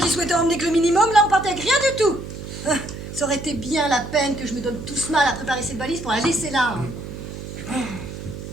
souhaitais emmener que le minimum, là on partait avec rien du tout. Ça aurait été bien la peine que je me donne tout ce mal à préparer cette valise pour la laisser là. Hein.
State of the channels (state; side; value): noise; right; hum, 10 dB below the sound